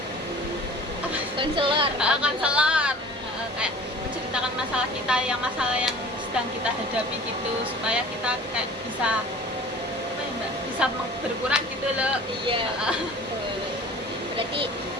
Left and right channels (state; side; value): normal; both; correlation 0.44